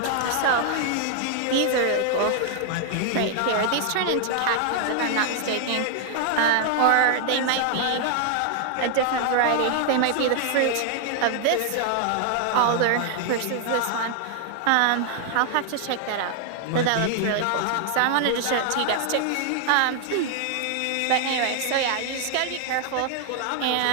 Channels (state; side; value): different; both; correlation 0.00